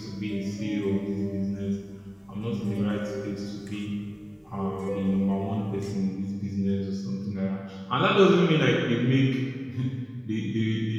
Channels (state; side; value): identical; both; correlation 1.00